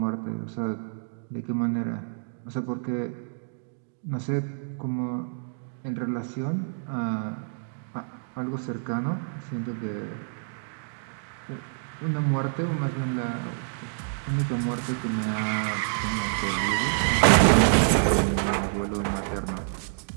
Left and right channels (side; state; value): left; silent; digital silence